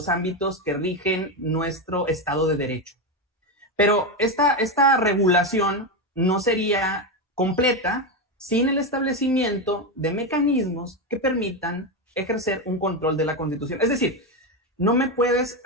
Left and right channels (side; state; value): both; normal; correlation 0.12